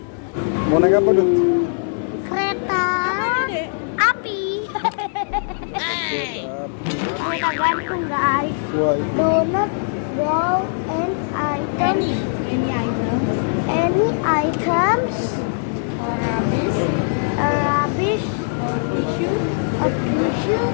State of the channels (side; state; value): right; silent; digital silence